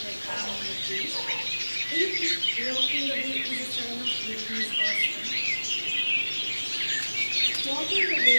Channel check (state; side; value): inverted; both; correlation -1.00